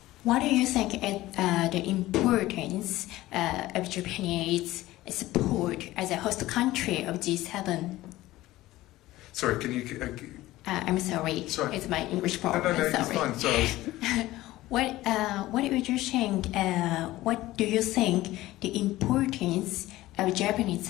What do you think is the importance of Japanese support as a host country of G7? Sorry, can you... I'm sorry. It's my English problem. No, sorry. it's fine. Sorry. What do you think? What do you think the importance of Japanese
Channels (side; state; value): right; quieter; 16.9 dB